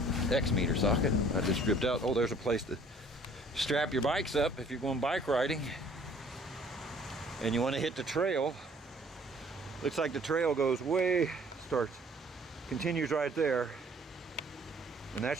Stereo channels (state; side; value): normal; both; correlation 0.55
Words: X meter socket. I just stripped out. Oh, there's a place to strap your bikes up if you're going bike riding and you want to hit the trail. Looks like the trail goes way, continues right there. And that